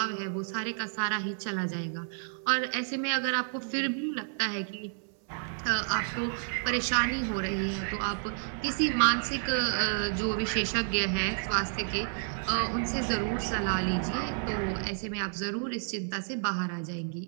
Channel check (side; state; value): left; silent; 55 dB below the other